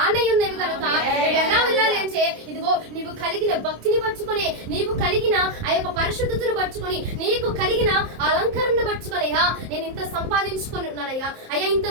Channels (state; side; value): late; left; 27 ms